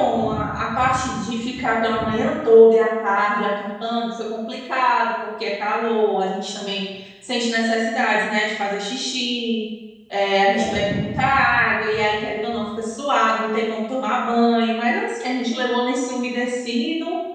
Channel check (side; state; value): both; identical; correlation 1.00